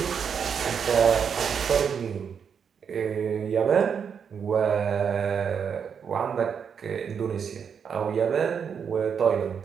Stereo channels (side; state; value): left; quieter; 7.0 dB